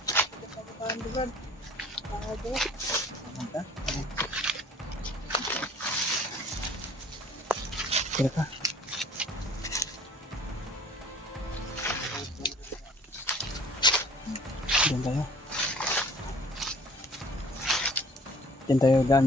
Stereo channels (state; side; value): normal; both; correlation 0.51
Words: Paano ba? Paano ba? Manta? Kira ka. Diyan tayo. Diyan tayo daan,